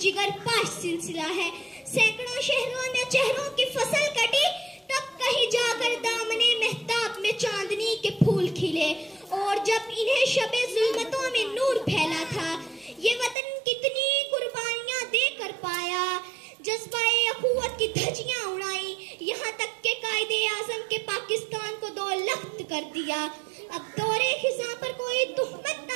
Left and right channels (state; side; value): drops out; left; at 13.4 s